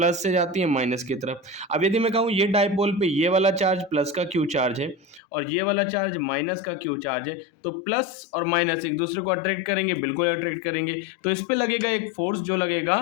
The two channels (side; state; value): right; drops out; at 5.2 s